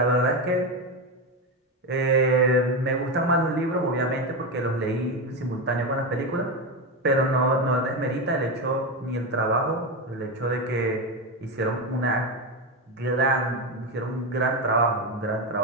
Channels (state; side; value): normal; both; correlation 0.13